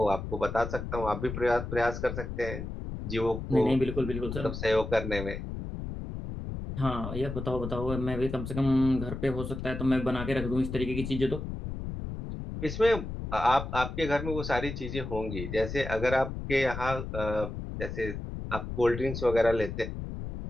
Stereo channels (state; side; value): noise; left; rumble, 6 dB below the sound